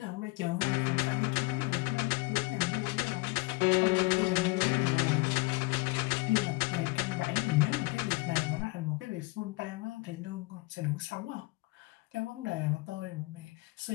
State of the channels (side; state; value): right; quieter; 24.7 dB